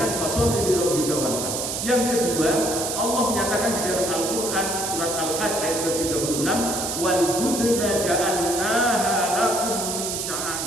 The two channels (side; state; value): right; noise; hiss, 3 dB below the sound